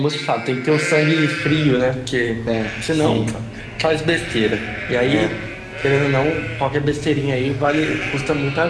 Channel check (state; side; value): identical; both; correlation 1.00